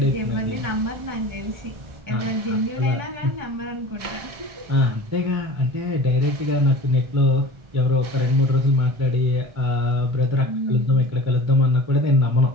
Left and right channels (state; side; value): late; left; 1.3 ms